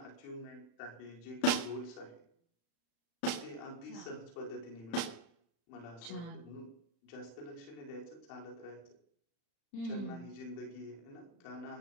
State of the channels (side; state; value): right; late; 35 ms